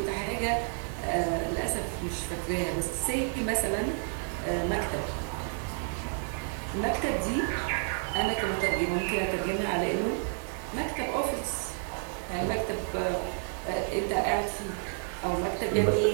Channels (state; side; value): silent; left; 58 dB below the other